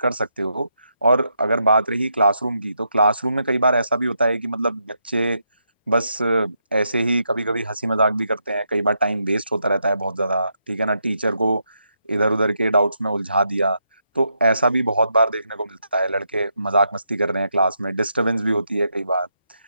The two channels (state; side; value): inverted; both; correlation -0.81